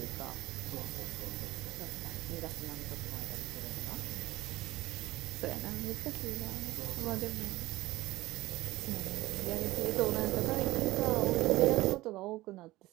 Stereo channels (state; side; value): quieter; left; 18.4 dB